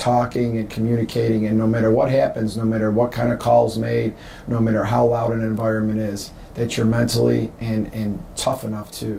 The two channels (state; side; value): identical; both; correlation 1.00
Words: and communicating, and no matter what happens, no matter what kind of calls made, no matter how loud an environment is, that you're mentally and tough enough